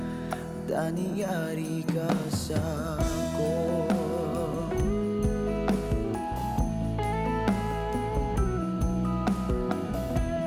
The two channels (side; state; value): both; identical; correlation 1.00